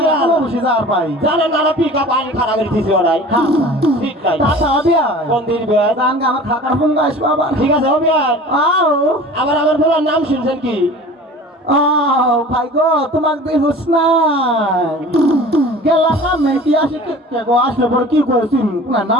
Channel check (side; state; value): both; normal; correlation 0.42